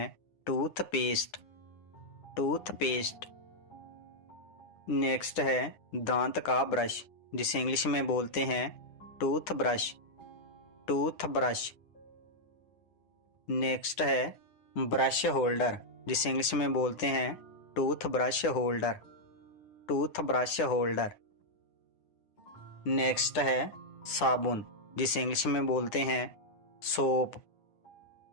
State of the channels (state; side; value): late; right; 9.7 ms